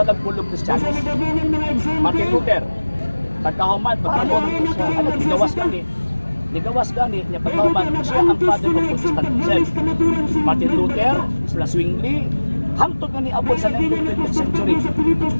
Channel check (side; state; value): both; inverted; correlation -1.00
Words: Kristiyanos. Martin Luther, pagkahuman, Nigawas gani niya pagkahuman, siya ang father of Protestantism. Martin Luther, sila Zwingli, hangtod nga ni abot sa 19th century.